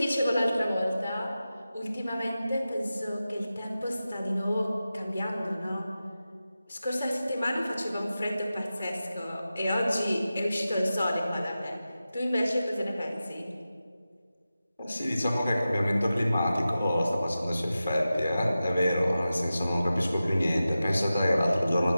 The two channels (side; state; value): both; inverted; correlation -0.94